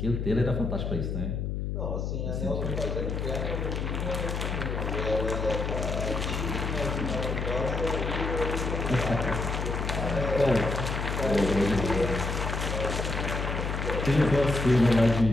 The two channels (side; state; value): left; noise; hum, 2 dB below the sound